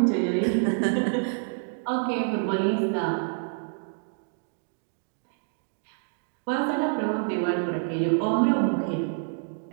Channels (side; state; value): left; silent; 60 dB below the other